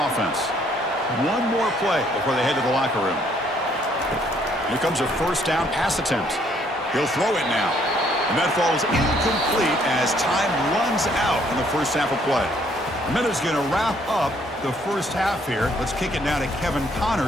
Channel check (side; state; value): both; normal; correlation 0.66